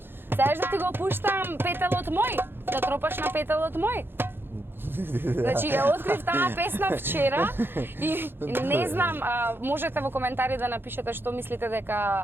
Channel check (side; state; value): left; late; 0.10 ms